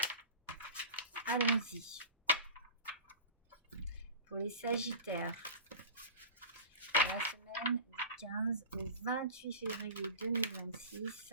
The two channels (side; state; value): both; inverted; correlation -0.33